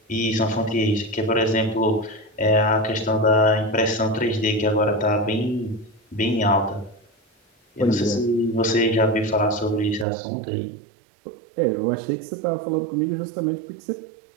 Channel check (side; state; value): left; drops out; at 10.1 s